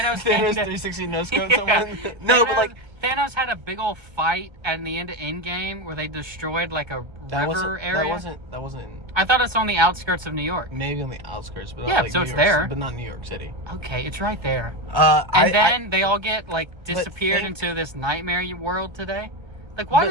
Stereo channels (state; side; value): late; left; 1.3 ms